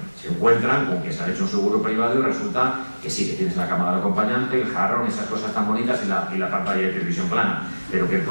Se encuentran con que se ha hecho un seguro privado y resulta que sí, que tienes la cama del acompañante, el jarrón, esas cosas tan bonitas y la pantalla de televisión plana. Pero que el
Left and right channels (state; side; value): inverted; both; correlation -1.00